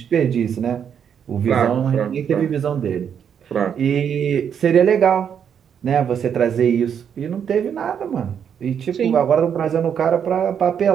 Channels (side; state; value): left; quieter; 8.0 dB